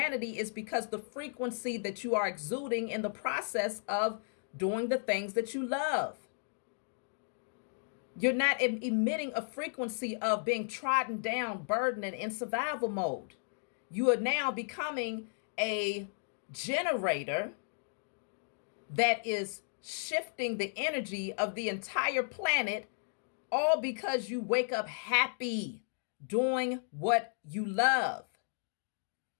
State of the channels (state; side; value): silent; right; digital silence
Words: is because the frequency that you are exuding in the process of doing the things that you love. You're not emitting a frequency of being trodden down, burdened, and in survival mode. You are now becoming a generator that is shifting the energy of the entire planet, all because you wake up happy doing what you love.